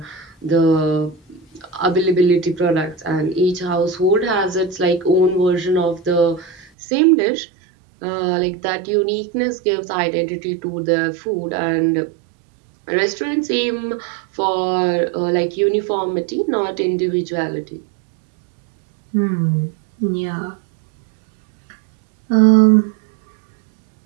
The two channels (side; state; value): left; drops out; at 6.7 s